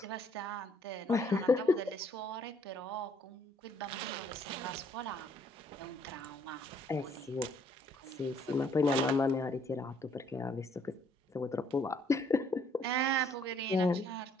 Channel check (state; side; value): normal; both; correlation 0.65